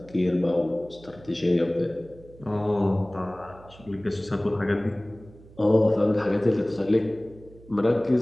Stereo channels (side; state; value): right; noise; hum, 22 dB below the sound